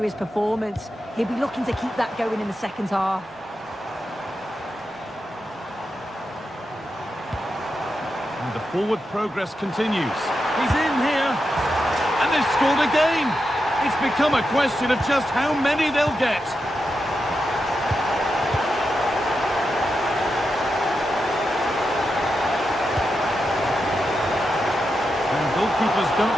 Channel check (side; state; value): both; normal; correlation 0.87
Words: his performance. He'll be looking to keep that going in the second half. And the forward progress continues. He's in here. And they've scored again. It's become a question of just how many they'll get. Goalkeepers